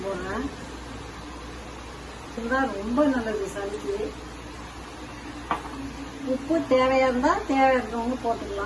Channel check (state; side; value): identical; both; correlation 1.00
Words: போடுறேன். இதுதான் ரொம்ப நல்லது சளிக்கு. உப்பு தேவையா இருந்தா தேவையானவங்க